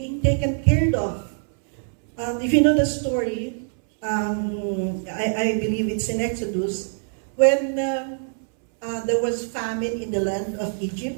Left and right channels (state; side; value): silent; left; 63 dB below the other